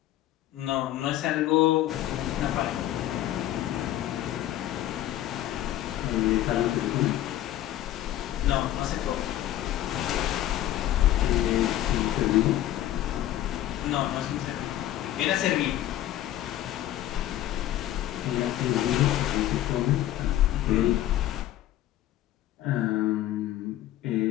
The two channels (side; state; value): right; quieter; 13.3 dB